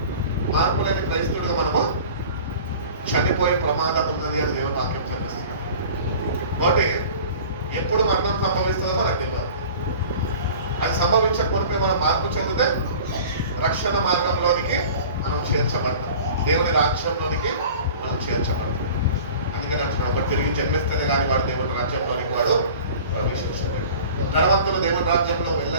మార్పు లేని క్రైస్తవుడిగా మనము చనిపోయే ప్రమాదం ఉన్నది అని దేవుని వాక్యం చెప్తుంది. కాబట్టి ఎప్పుడు మరణం సంభవిస్తుందో మనకు తెలియదు. అది సంభవించకపోతే మనం మార్పు చెందితే రక్షణ మార్గంలోనికి మనం చేర్చబడతాం, దేవుని రాజ్యంలోనికి మనం చేర్చబడతాం. అందుకని అంటున్నాడు ఒకటి తిరిగి జన్మిస్తేనే కానీ వాడు దేవుని రాజ్యంలోనికి వాడు ప్రవేశించలేడు. ధనవంతులు దేవుని రాజ్యంలో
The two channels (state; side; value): inverted; both; correlation -0.42